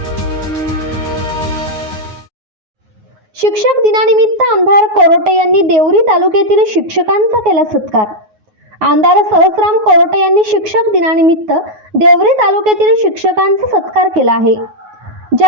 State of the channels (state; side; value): late; left; 9.4 ms